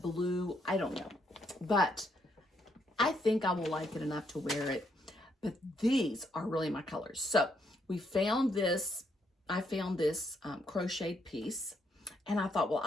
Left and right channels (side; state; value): both; normal; correlation 0.75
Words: blue, I don't know. But I think I will like it enough to wear it. But these are really my colors. So we found this, I found this crocheted piece, and I thought, well,